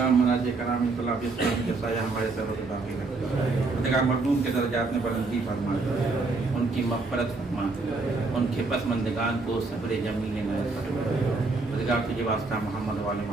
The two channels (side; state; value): left; quieter; 3.7 dB